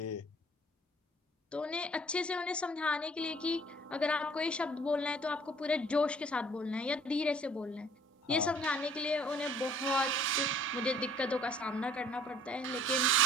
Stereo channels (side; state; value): both; normal; correlation 0.54